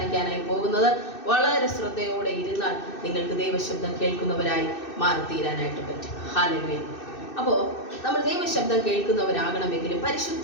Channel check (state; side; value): late; right; 2.6 ms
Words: പോകുന്നത്. വളരെ ശ്രദ്ധയോടെ ഇരുന്നാൽ നിങ്ങൾക്ക് ദൈവശബ്ദം കേൾക്കുന്നവരായി മാറിത്തീരാനായിട്ട് പറ്റും. ഹല്ലേലൂയ. അപ്പോൾ നമ്മൾ ദൈവശബ്ദം കേൾക്കുന്നവരാകണമെങ്കിലും